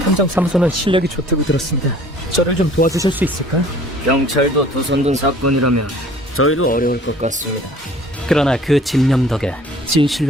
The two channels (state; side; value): normal; both; correlation 0.52